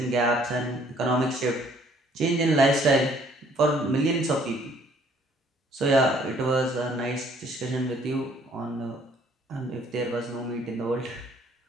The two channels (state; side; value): normal; both; correlation 0.61